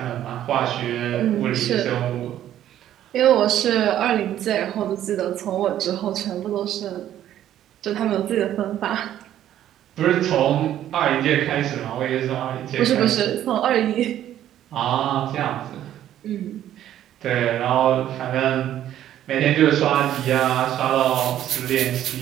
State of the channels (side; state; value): left; quieter; 11.7 dB